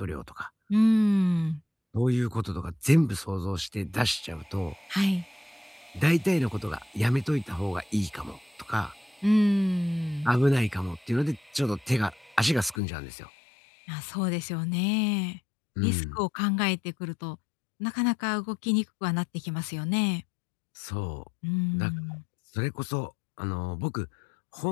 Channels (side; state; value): right; drops out; at 12.8 s